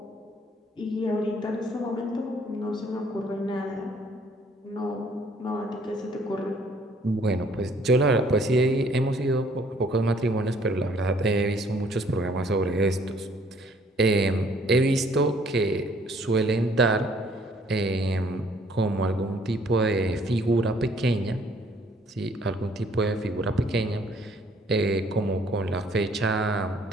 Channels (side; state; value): both; normal; correlation 0.61